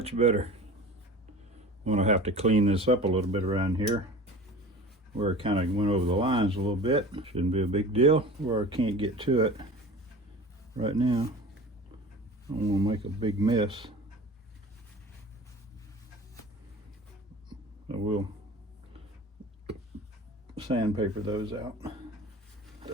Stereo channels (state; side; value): normal; both; correlation 0.38